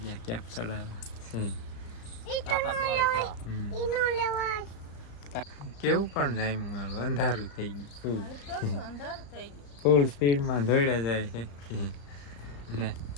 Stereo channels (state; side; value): late; right; 35 ms